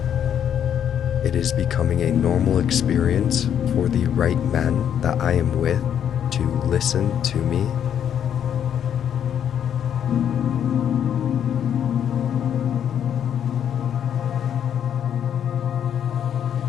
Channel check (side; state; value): right; quieter; 9.2 dB